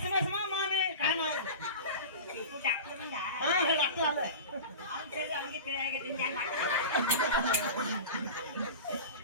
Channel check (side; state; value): both; inverted; correlation -0.31